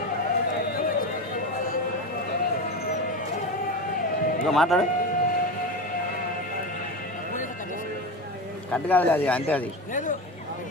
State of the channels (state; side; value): normal; both; correlation 0.22